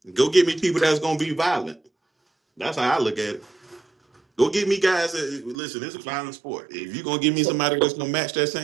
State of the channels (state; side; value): drops out; left; at 5.6 s